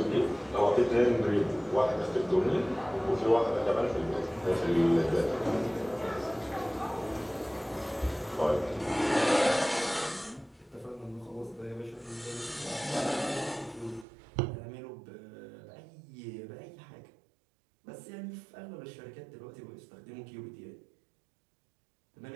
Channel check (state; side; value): drops out; left; at 14.1 s